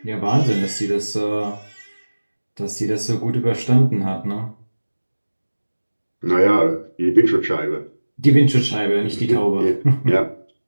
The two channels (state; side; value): inverted; both; correlation -1.00